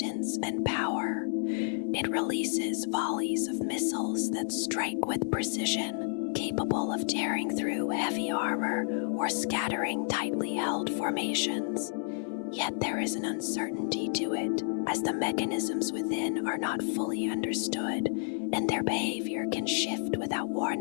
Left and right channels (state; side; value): silent; right; 57 dB below the other